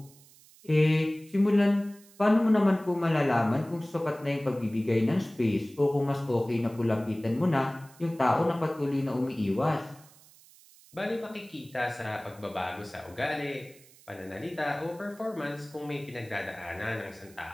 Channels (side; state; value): right; noise; hiss, 25 dB below the sound